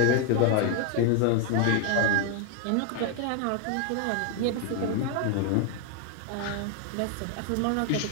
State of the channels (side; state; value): both; different; correlation 0.00